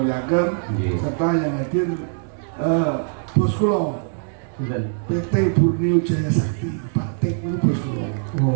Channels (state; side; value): silent; left; digital silence